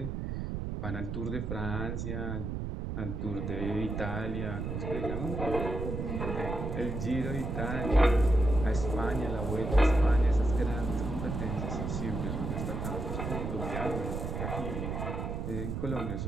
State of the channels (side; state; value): right; noise; rumble, 3 dB below the sound